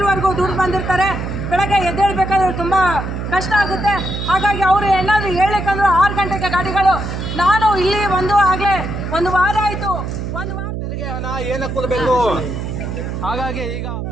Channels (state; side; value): noise; right; hum, 5 dB below the sound